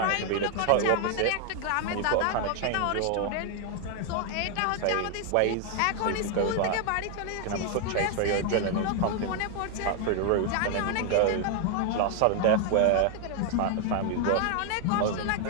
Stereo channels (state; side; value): different; both; correlation 0.00